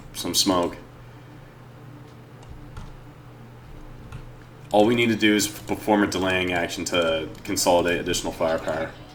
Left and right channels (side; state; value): both; identical; correlation 1.00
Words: some smoke. All we need to do is perform a delaying action to consolidate additional firepower.